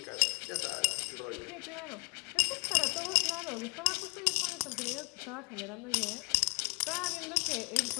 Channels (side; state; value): right; quieter; 29.3 dB